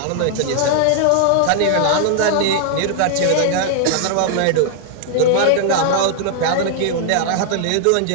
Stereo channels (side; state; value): both; different; correlation 0.00